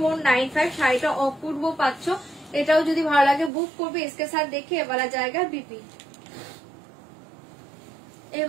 শাড়িটা অপূর্ব পাচ্ছ। এটাও যদি ভালো লাগে বুক করবে। इसके साथ देखिए ये वाला जाएगा बीपी, ये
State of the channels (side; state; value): left; drops out; at 3.5 s